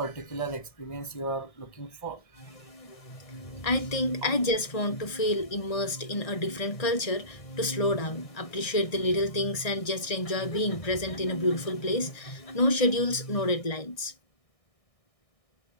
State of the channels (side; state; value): right; late; 1.6 ms